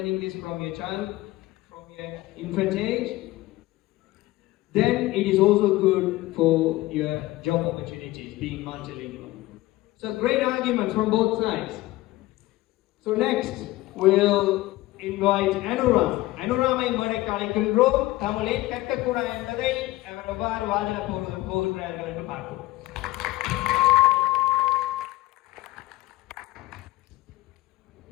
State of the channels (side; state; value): right; quieter; 18.0 dB